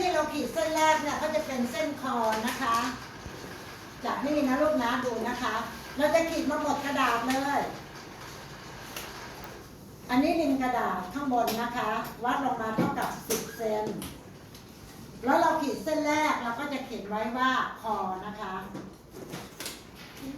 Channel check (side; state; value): both; identical; correlation 1.00